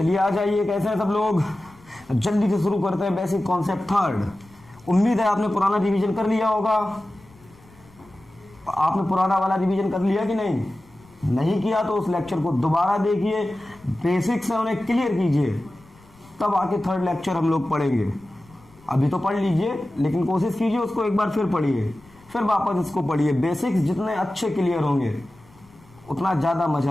आ जाइए, कैसे हैं सब लोग। जल्दी से शुरू करते हैं बेसिक कॉन्सेप्ट थर्ड। उम्मीद है आपने पुराना रिवीजन कर लिया होगा। आपने पुराना वाला रिवीजन कर लिया कि नहीं किया तो उस लेक्चर को दोबारा देखिए, बेसिक्स है उन्हें क्लियर कीजिए, तब आके थर्ड लेक्चर हम लोग पढ़ेंगे। अभी तो पढ़ लीजिए, लेकिन कोशिश कीजिए उसको एक बार फिर पढ़िए, फिर वापस इसको पढ़िए। बेसिक्स जितने अच्छे क्लियर होंगे उतना ज़्यादा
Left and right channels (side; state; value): left; noise; rumble, 27 dB below the sound